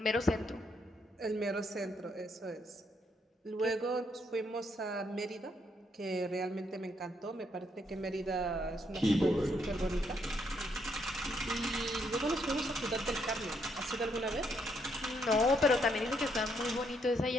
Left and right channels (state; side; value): normal; both; correlation 0.74